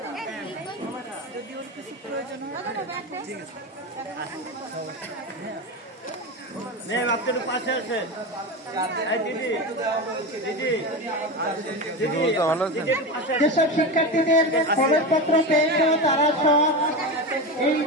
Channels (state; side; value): normal; both; correlation 0.21